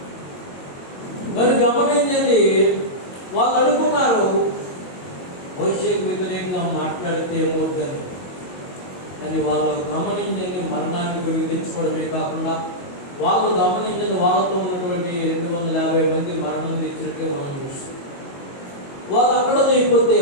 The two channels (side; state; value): right; late; 22 ms